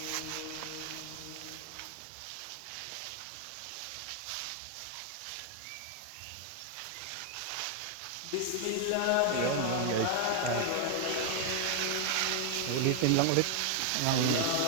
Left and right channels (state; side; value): different; both; correlation 0.00